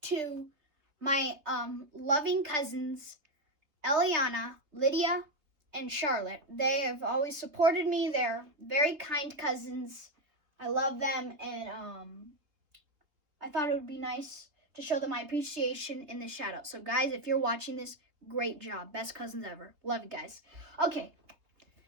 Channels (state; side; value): late; left; 3.4 ms